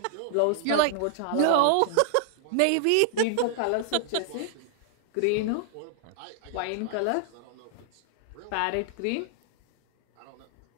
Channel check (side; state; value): both; different; correlation 0.00